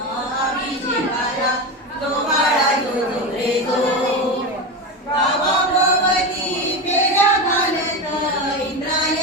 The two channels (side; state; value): both; normal; correlation 0.19